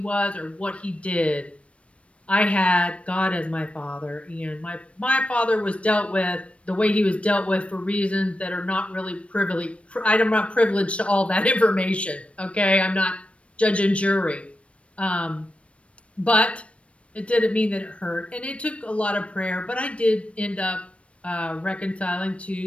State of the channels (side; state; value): right; late; 0.062 ms